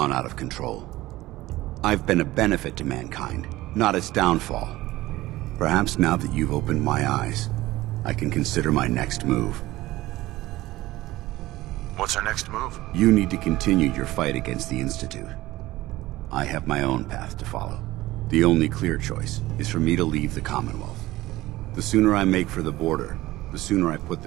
out of control. I've been a benefit to mankind, not its downfall. Perhaps now that you've opened my eyes, I can consider my next move. What's our next move? You need to continue your fight against the Institute. I have my own path to follow. The only clear choice is for me to leave the Commonwealth. The sooner I make for the border, the sooner I put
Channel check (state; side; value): quieter; left; 17.5 dB